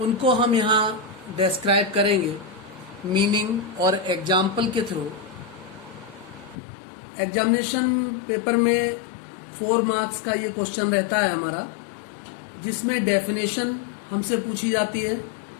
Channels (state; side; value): drops out; right; at 6.6 s